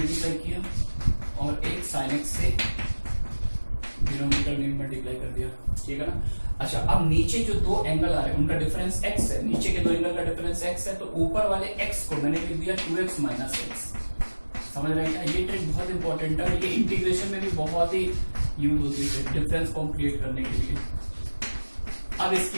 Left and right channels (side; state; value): both; inverted; correlation -1.00